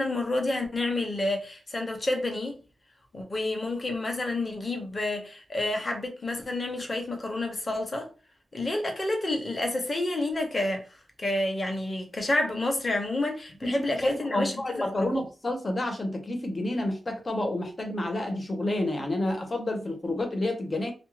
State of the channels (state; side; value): normal; both; correlation 0.90